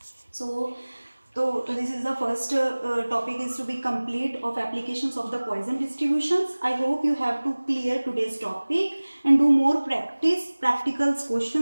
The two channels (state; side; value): inverted; both; correlation -1.00